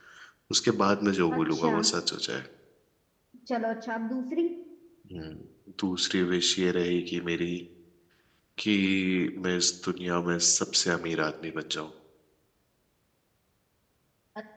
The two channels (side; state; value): both; identical; correlation 1.00